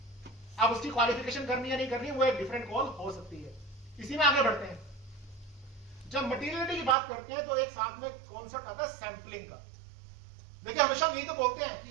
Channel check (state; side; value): drops out; left; at 7.0 s